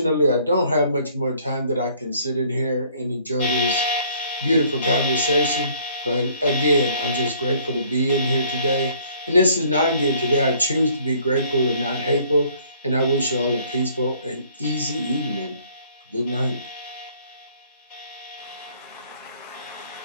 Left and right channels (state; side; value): inverted; both; correlation -0.59